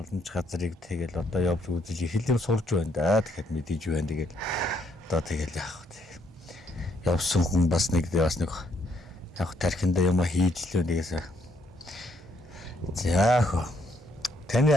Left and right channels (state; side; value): normal; both; correlation 0.72